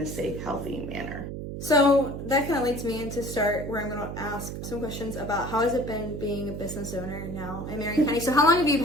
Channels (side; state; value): right; noise; hum, 7 dB below the sound